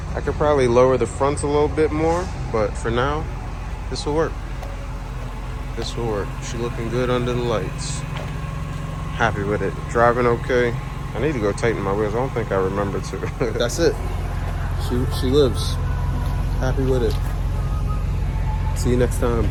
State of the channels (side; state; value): both; identical; correlation 1.00